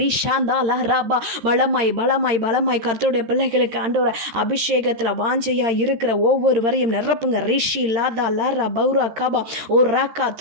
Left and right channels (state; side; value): late; left; 13 ms